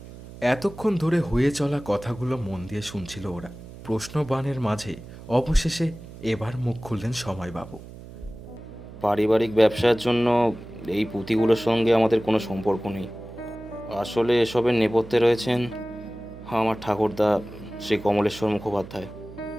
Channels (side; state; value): right; noise; hum, 16 dB below the sound